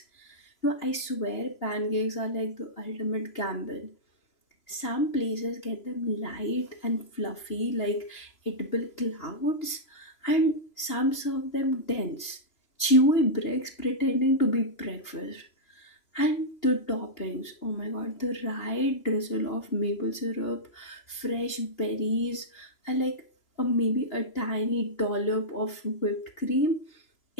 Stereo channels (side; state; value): right; late; 2.8 ms